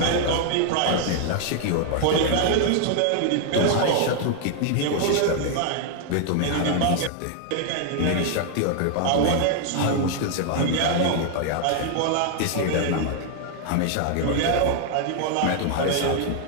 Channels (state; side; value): different; both; correlation 0.00